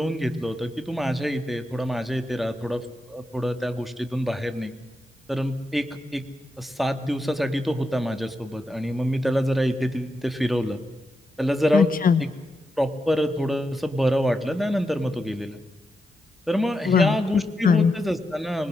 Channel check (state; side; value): normal; both; correlation 0.86